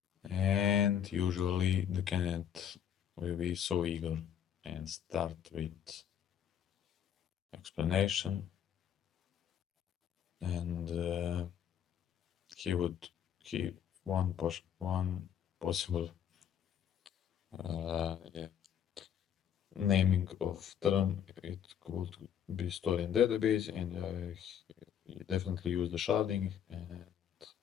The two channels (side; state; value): right; quieter; 9.2 dB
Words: And usually the candidate will be so eager and start with explanation, and he would keep one possible yeah, naming of term. It could be stored in database, and he definitely use the sharding and